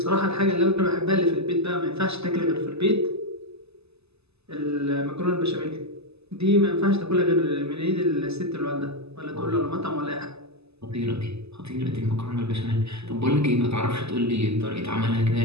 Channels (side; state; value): left; late; 0.79 ms